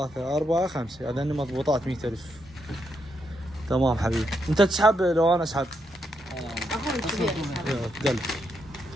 4 5 هذين مضبوطات 100000. تمام حبيبي. انت تسحب لو انا اسحب؟ اخوي الكبير. دل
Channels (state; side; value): normal; both; correlation 0.80